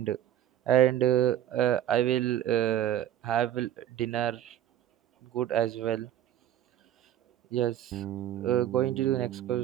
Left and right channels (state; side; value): quieter; left; 11.4 dB